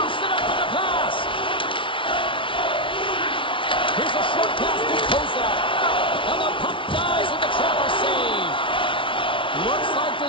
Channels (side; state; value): right; late; 0.25 ms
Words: it up in the pass. Here's a short pass to Kozak. And the puck dies with the trapper save. Looks like